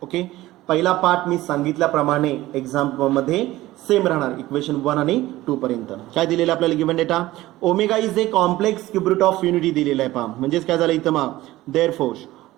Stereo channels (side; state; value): left; quieter; 16.9 dB